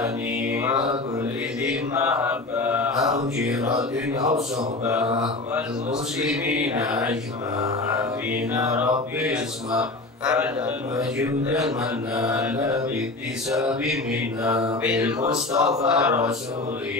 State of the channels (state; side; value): quieter; right; 3.1 dB